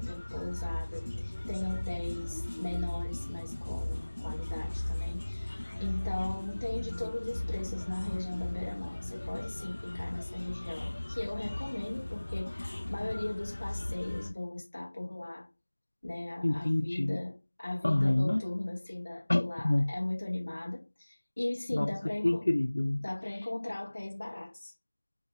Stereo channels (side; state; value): both; inverted; correlation -1.00